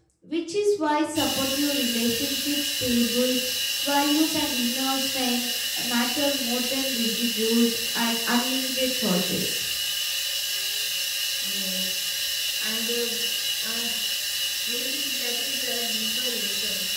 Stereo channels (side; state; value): both; identical; correlation 1.00